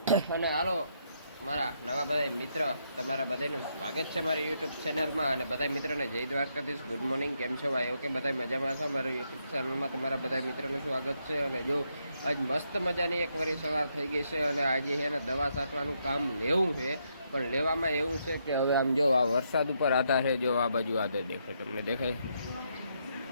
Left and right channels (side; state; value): both; inverted; correlation -0.77